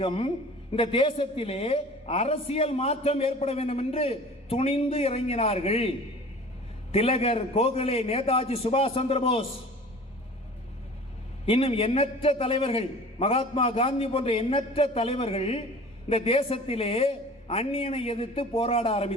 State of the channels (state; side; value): normal; both; correlation 0.43